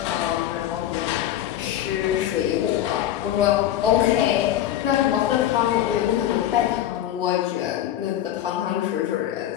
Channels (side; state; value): right; quieter; 12.0 dB